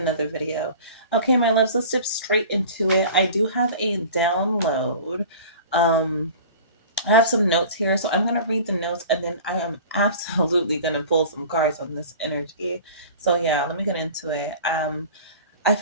video. Okay, my loves, let's dip straight into it. I do have a download. I have some notes here, so I'm going to read the notes and then I am absolutely going to pull some cards on this energy. So, yeah, let me get into it. I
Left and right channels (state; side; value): inverted; both; correlation -0.40